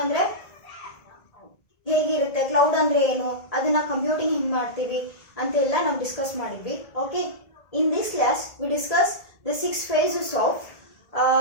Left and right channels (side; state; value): right; late; 1.7 ms